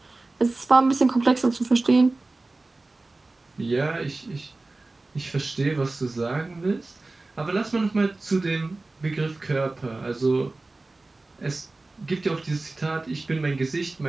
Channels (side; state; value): left; quieter; 3.2 dB